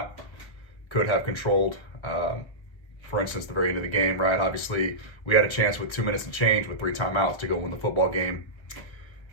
could have controlled. For instance, the very end of the game, right? Obviously, we had a chance with 2 minutes and change with 3 timeouts to go win the football game.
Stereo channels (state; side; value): late; right; 1.5 ms